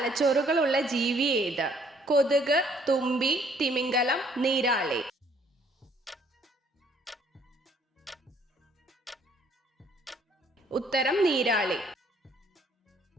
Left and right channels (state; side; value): normal; both; correlation 0.63